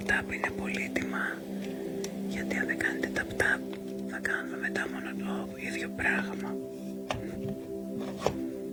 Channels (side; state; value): both; identical; correlation 1.00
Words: είναι πολύτιμα. Γιατί αν δεν κάνετε tap-tap θα κάνουμε μετά μόνο το ίδιο πράγμα.